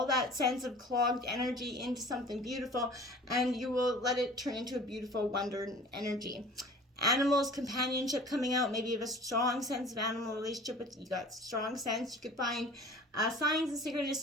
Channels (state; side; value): normal; both; correlation 0.44